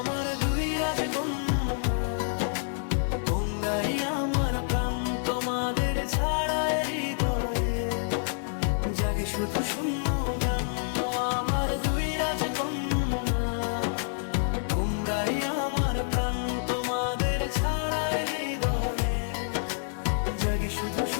দুই রাজকন্যা, তোমরাই আমার প্রাণ, তোমাদের ছাড়ায় হৃদয়ে জাগে শুধু শূন্য গান। ও আমার দুই রাজকন্যা, তোমরাই আমার প্রাণ, তোমাদের ছাড়ায় হৃদয়ে জাগে শুধু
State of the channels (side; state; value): right; silent; 59 dB below the other